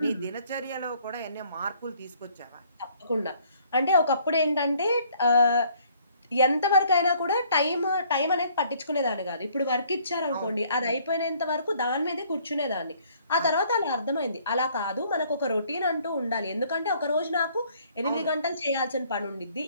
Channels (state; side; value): inverted; both; correlation -0.61